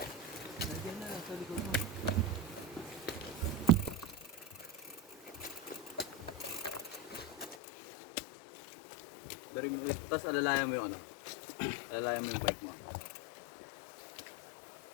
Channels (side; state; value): right; drops out; at 7.6 s